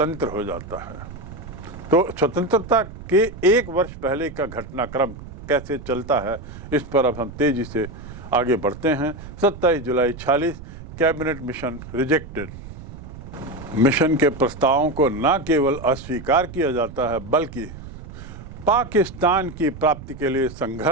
हो जाता है। तो स्वतंत्रता के एक वर्ष पहले का घटनाक्रम कैसे चलता है, इस पर अब हम तेजी से आगे बढ़ते हैं। 27 जुलाई 46 कैबिनेट मिशन रिजेक्टेड। मिशन के प्रस्तावों को न केवल अस्वीकार किया जाता है बल्कि पाकिस्तान की प्राप्ति के लिए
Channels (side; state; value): right; noise; rumble, 14 dB below the sound